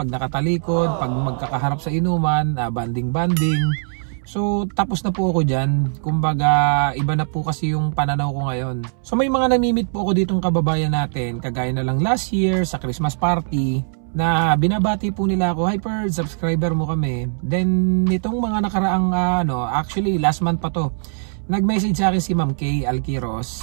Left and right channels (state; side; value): silent; left; 65 dB below the other